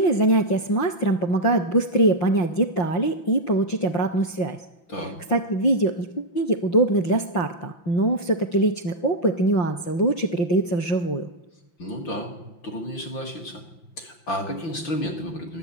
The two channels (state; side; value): late; right; 5.9 ms